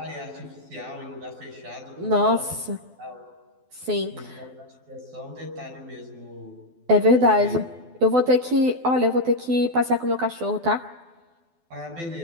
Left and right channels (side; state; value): left; late; 12 ms